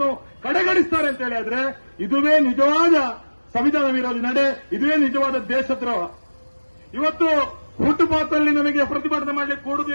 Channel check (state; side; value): inverted; both; correlation -1.00